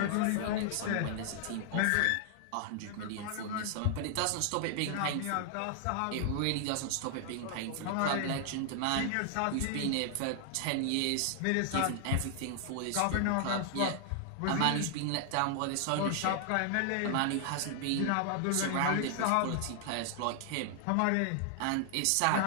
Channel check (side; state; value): both; different; correlation 0.00